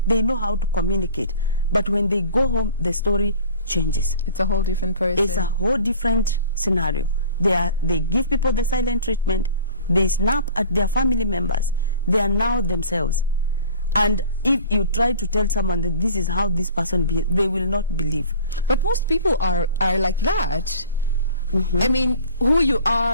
They know how to communicate. But when they go home, the story changes. It's a whole different person. It's a whole different scenario. They give people the silent treatment. They snap at their family members. They are now themselves. And if you try to tell someone that this is how this person behaves, they will not believe. But most people are like that. I mean, who you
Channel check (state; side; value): inverted; both; correlation -0.44